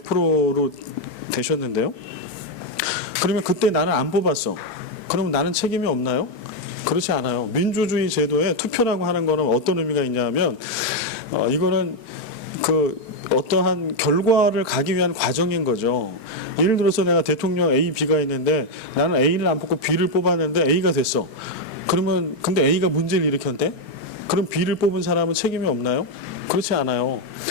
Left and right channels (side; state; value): right; late; 4.3 ms